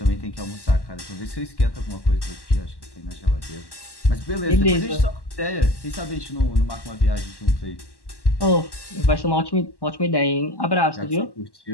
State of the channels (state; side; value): late; right; 1.1 ms